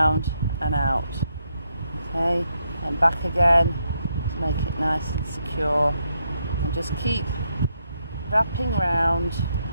and out, okay, and back again to make it nice and secure, and just keep wrapping round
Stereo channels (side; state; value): both; inverted; correlation -0.79